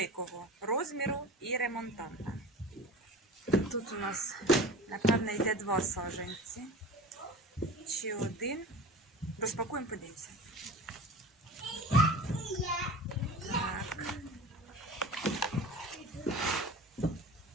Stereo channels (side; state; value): both; normal; correlation 0.36